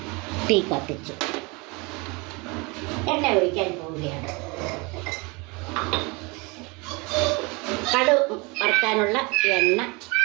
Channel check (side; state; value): left; quieter; 27.6 dB